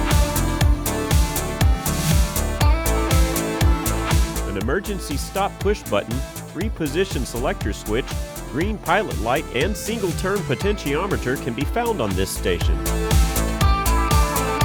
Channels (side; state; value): both; identical; correlation 1.00